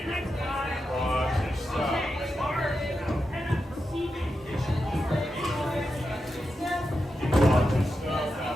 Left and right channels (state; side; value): normal; both; correlation 0.88